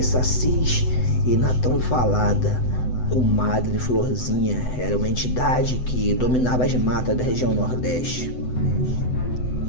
sacis e na tão falada Comadre Florzinha. Era uma entidade que dominava as matas da região Nordeste.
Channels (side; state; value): right; late; 7.9 ms